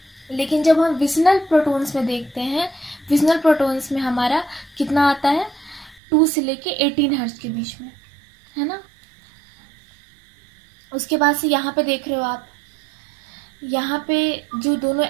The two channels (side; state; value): left; drops out; at 6.0 s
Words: लेकिन जब हम विसिनल प्रोटॉन्स में देखते हैं, विसिनल प्रोटॉन्स में हमारा कितना आता है 2 से लेके 18 हर्ट्ज के बीच में, है ना। उसके बाद से यहाँ पे देख रहे हो आप, यहाँ पे जो दोनों